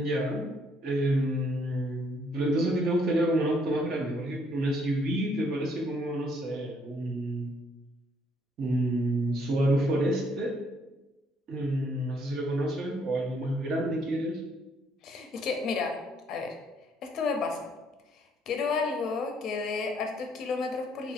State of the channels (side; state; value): both; normal; correlation 0.68